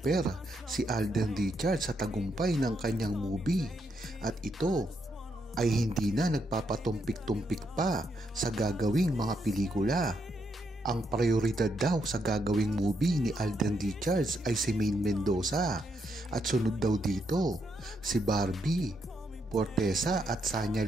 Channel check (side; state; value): both; normal; correlation 0.78